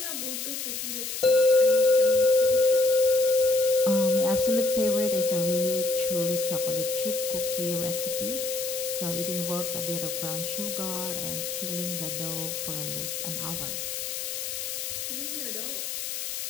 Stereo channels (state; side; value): noise; left; hiss, 5 dB below the sound